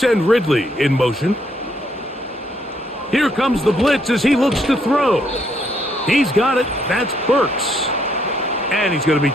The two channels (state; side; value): normal; both; correlation 0.72